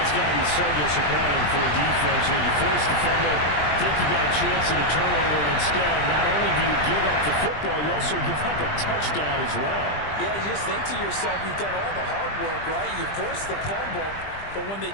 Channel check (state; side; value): late; right; 20 ms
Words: got to be so disappointing for a defense. You force the fumble, think you got a chance at a turnover, and instead, not only do you give up the football, you also give up a touchdown as well. Yeah, you just think to yourself, you've done all the hard work, right? You forced the fumble. But when they